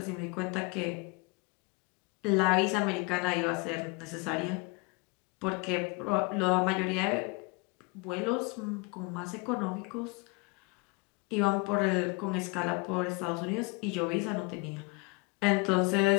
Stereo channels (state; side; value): quieter; right; 27.8 dB